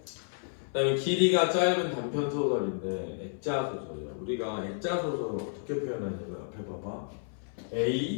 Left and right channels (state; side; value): silent; right; 57 dB below the other